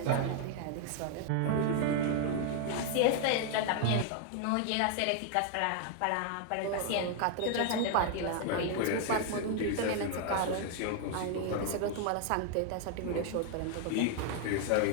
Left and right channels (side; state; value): both; different; correlation 0.00